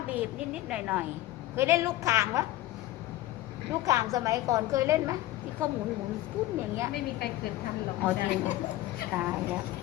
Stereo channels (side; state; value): right; quieter; 15.8 dB